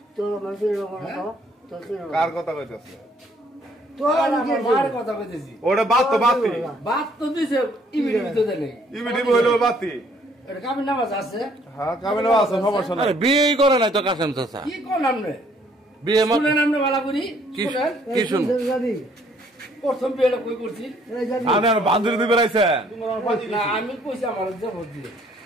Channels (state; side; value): normal; both; correlation 0.63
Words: তোর মানুষের কার কথা কইতেছে? তোর আমার মার কথা কইতেছি। ওটা বাতি বাত তো দিছে ইবিডি ভিতরে নেই। ইবিডি হইলো বাতি। এটা কাবিন নামাজ আছে। হ্যাঁ কাবিনও আছে, সমস্যা নাই। আরে বিয়েই করে নাই তো কাসেম চাচা। কি কোন আমনে? বিয়ে শুনেন আমনে বালা করি? শুনেন? কি শুন? জানি প্রথম বিয়েটা কই করছি? এই জানি আপনার বান্ধবী দিবে রাইছেন? না আমি কইছি আমার জবর দিয়ে।